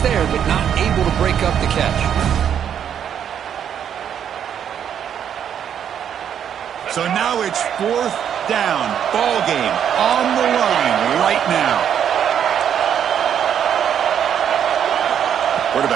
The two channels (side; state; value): left; quieter; 8.9 dB